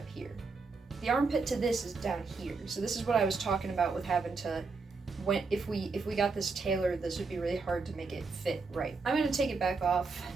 here. The armpit to this is down here. So this is what I was talking about with having to, if we got this tailored, this would be really hard to make it fit right. I'm gonna take it back off.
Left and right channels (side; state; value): left; quieter; 4.3 dB